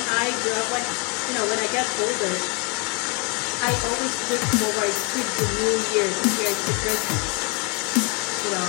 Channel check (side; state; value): right; quieter; 33.2 dB